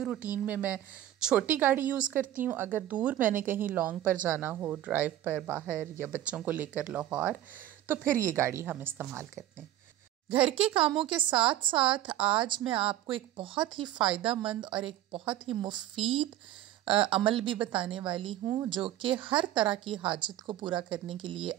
روٹین میں چھوٹی گاڑی یوز کرتی ہوں، اگر دور میں نے کہیں لانگ پر جانا ہو ڈرائیو پر باہر، یا بچوں کو لے کر لاہور، تو پھر یہ گاڑی ہم استعمال کرتے ہیں۔ گھر کے کاموں کے ساتھ ساتھ آج میں آپ کو ایک بہت ہی فائدہ مند اور ایک بہت ہی مفید عمل بھی بتانے والی ہوں، جو کہ ہر طرح کی حاجت کو پورا کرنے کے لیے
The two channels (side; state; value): left; quieter; 13.2 dB